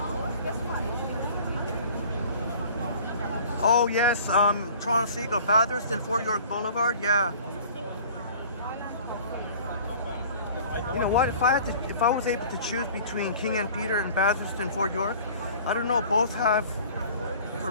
Oh yes, Toronto Seagull, Bathurst and Fort York Boulevard. Yeah. You know what? If I was able to choose between King and Peter and Bathurst and Fort York, I don't know. Both have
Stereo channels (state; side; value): inverted; both; correlation -0.47